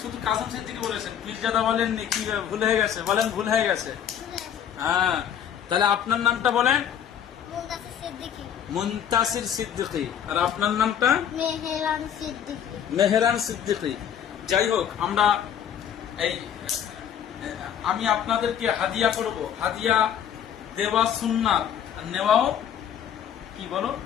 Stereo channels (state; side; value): quieter; right; 9.1 dB